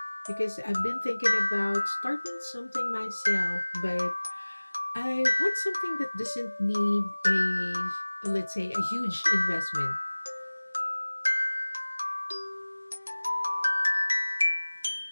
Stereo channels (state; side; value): inverted; both; correlation -1.00